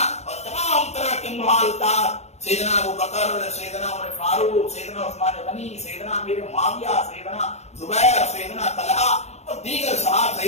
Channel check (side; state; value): right; late; 0.32 ms